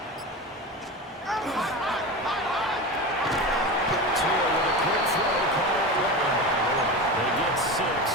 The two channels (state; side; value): normal; both; correlation 0.26